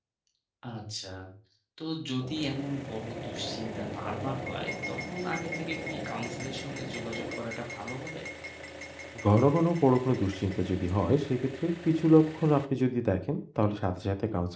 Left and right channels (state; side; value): identical; both; correlation 1.00